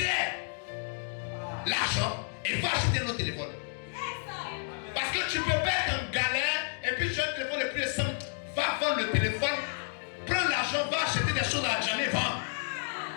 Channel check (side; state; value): right; silent; 57 dB below the other